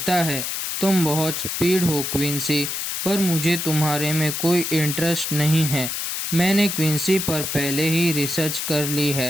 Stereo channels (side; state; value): left; noise; hiss, 3 dB below the sound